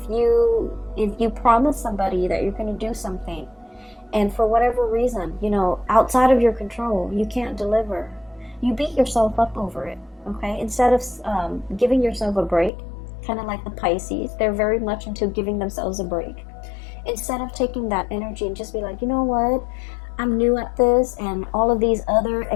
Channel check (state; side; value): drops out; right; at 12.7 s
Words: you promise somebody that you're going to do something, and for whatever reason, outside of your control, you can't deliver, you beat yourself up over it. Okay, instead of giving yourself a break, kind of like the Pisces, they're very much into giving themselves a break. Instead of taking that energy and just be like, you know what, I'm new at this, and all of these other